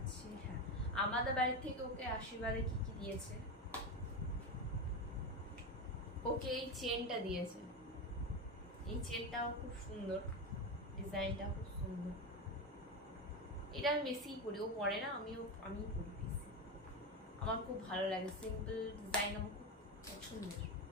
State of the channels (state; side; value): normal; both; correlation 0.17